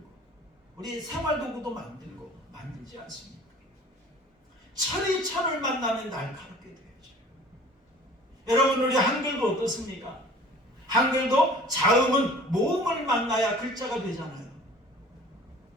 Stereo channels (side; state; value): both; normal; correlation 0.47